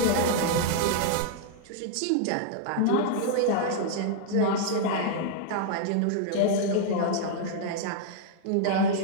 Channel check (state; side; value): different; both; correlation -0.01